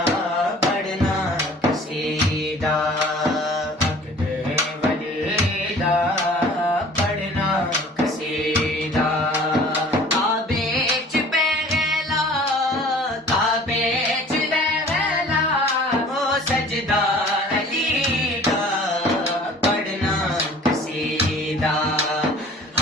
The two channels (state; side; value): normal; both; correlation 0.48